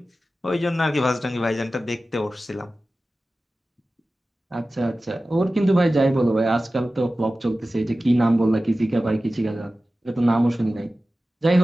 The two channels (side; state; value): both; normal; correlation 0.95